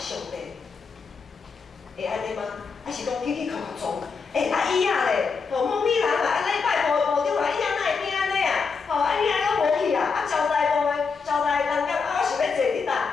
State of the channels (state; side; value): quieter; right; 5.2 dB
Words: 帝。会安尼吗？还是讲起起靠靠撞？椅仔咧，某米人啊，礼拜部长啊，椅仔哪会变安尼啊？椅仔拢无去啊，交代部的交代人讲我想要坐伫